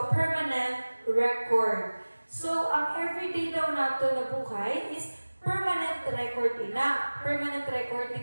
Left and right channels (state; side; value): inverted; both; correlation -1.00